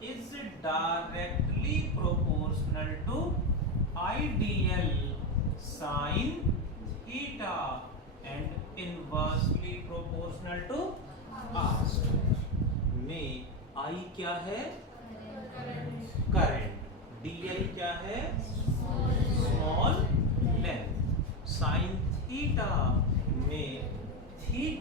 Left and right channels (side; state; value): both; normal; correlation 0.12